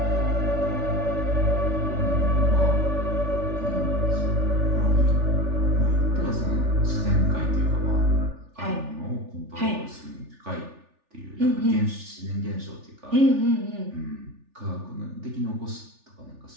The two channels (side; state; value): left; late; 3.4 ms